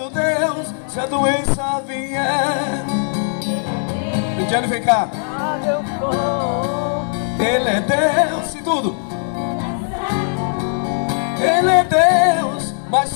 Deus. Se a doença vier, Ele vem cá. Onde eu for, Ele é Deus. Se tudo, Ele é Deus. Mas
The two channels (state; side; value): silent; right; 62 dB below the other